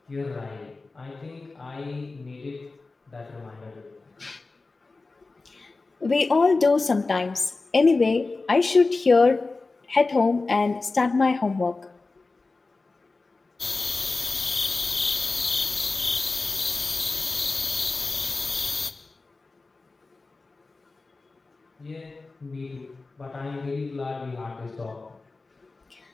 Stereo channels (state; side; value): quieter; right; 3.6 dB